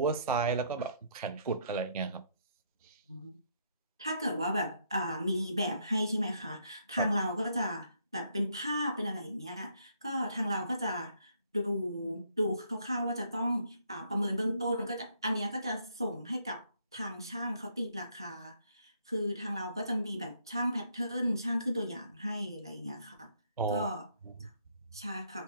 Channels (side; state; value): both; inverted; correlation -0.69